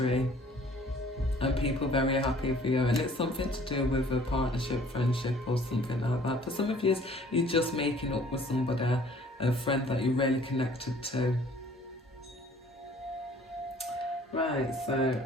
and people very happy for you, and it's something to do with a partnership, friendship, or something like that. For some of you, you're just making up with somebody, a friend that you're really connected to. Right, so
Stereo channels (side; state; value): both; normal; correlation 0.54